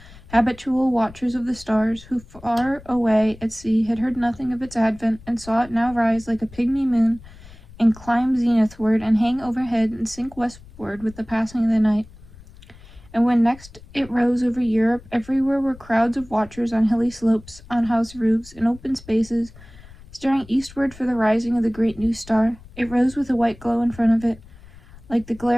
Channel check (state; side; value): noise; left; rumble, 21 dB below the sound